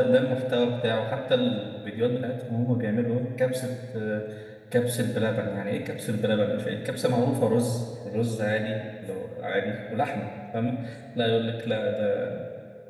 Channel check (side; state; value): both; identical; correlation 1.00